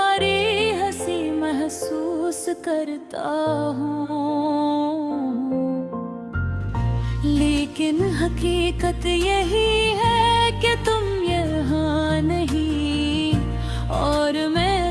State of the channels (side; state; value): both; identical; correlation 1.00